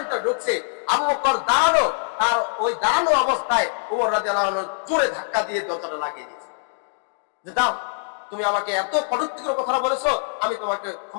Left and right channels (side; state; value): right; silent; digital silence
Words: ভিতরে ঢুকছে, আবু বকর দাঁড়ানো, তার ওই দাঁড়ানো অবস্থায় উমর রাদিয়াল্লাহু আনহু জোরে ধাক্কা দিয়ে দরজাটা লাগিয়ে দিয়েছে যে দাও, তুমি আমাকে এত কটূক্তিকর কথা বলেছো, আমি তোমাকে